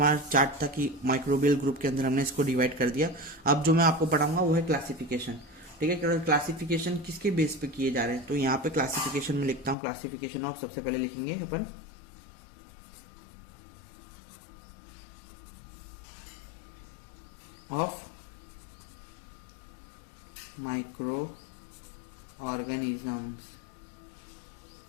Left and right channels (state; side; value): drops out; right; at 9.8 s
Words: चार्ट था कि माइक्रोबियल ग्रुप के अंदर हमने इसको डिवाइड कर दिया। अब जो मैं आपको पढ़ाऊंगा वो है क्लासिफिकेशन, ठीक है। क्लासिफिकेशन किसके बेस पे किए जा रहे हैं? तो यहाँ पे क्लासिफिकेशन में लिखता हूँ क्लासिफिकेशन ऑफ, सबसे पहले लिखेंगे अपन ऑफ माइक्रो ऑर्गेनिजम्स।